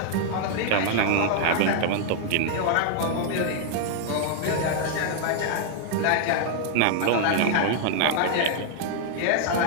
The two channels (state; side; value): different; both; correlation 0.00